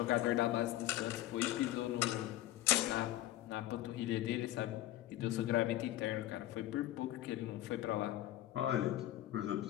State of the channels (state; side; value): quieter; right; 14.4 dB